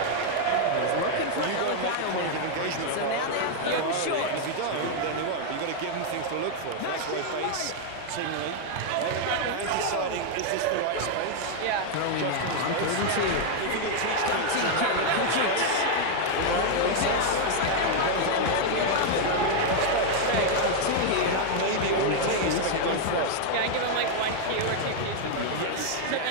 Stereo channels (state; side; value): different; both; correlation 0.00